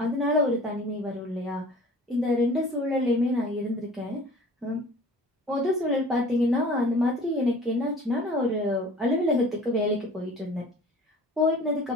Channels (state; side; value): normal; both; correlation 0.46